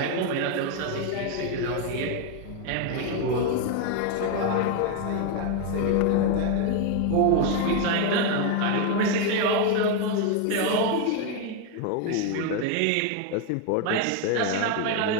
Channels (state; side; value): different; both; correlation 0.01